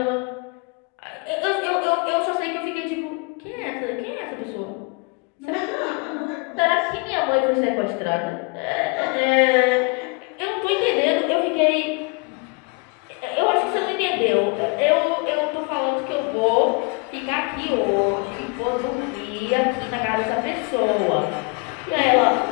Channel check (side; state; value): right; quieter; 31.8 dB